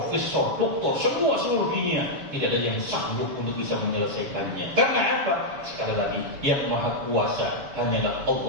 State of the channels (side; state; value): left; late; 7.1 ms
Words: doktor, semua seluruh dunia tidak ada yang sanggup untuk bisa menyelesaikannya. Karena apa? Sekali lagi, yang maha kuasa hanyalah